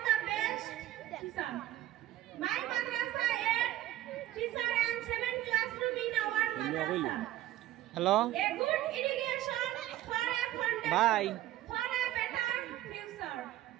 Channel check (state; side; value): quieter; left; 14.5 dB